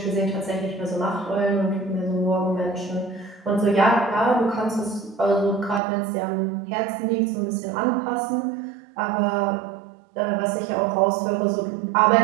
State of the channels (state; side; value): drops out; left; at 5.8 s